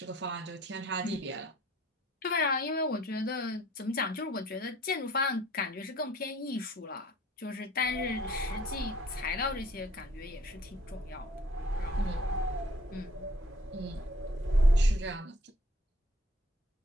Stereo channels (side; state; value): both; normal; correlation 0.56